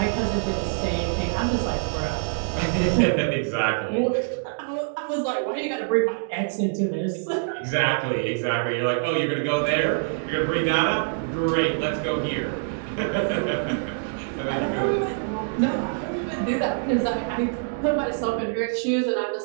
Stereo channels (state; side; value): silent; left; digital silence